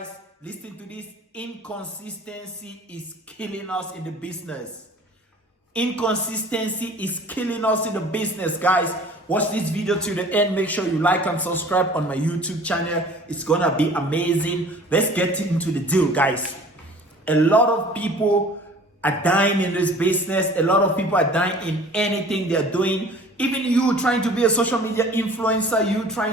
Listen to this. Inconsistency is killing us in the business. Inconsistency is killing us in the business, guys. Watch this video to the end. Make sure you like and subscribe on my YouTube channel. It's gonna be amazing. Let's get into the deal, guys. A lot of people are dying in this business. A lot of people are dying in anything they're doing. Even you trying to be a social media influencer, you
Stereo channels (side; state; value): both; normal; correlation 0.47